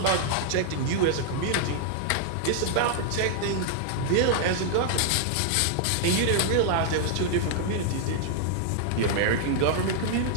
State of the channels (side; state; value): both; different; correlation -0.01